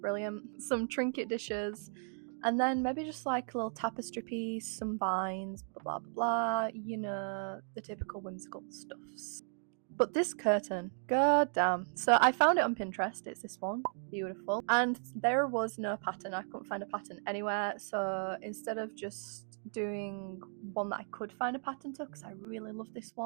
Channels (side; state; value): left; silent; 54 dB below the other